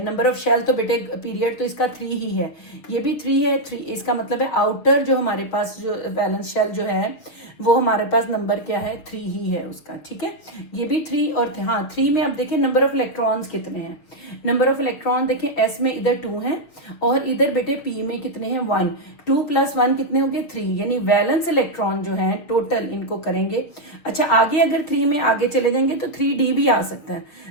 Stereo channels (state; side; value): late; right; 6.5 ms